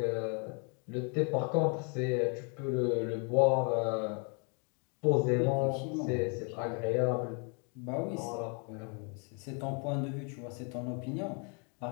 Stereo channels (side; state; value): right; quieter; 36.3 dB